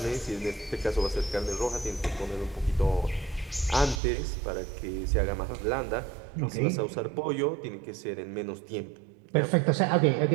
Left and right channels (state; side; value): drops out; left; at 4.0 s